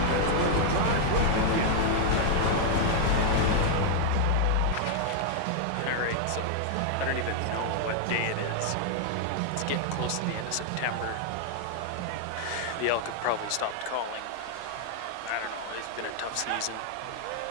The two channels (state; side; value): different; both; correlation 0.00